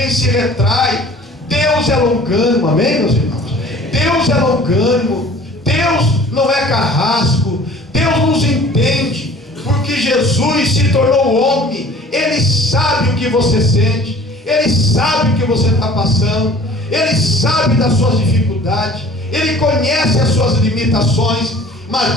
se retrai. Deus é longânimo, amém, meus irmãos? Deus é longânimo, Deus não é carrasco, Deus nos entende, porque Jesus se tornou homem. Ele sabe o que você sente, Ele sabe o que você está passando, Ele sabe das suas dificuldades, Ele conhece as suas limitações.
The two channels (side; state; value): both; normal; correlation 0.48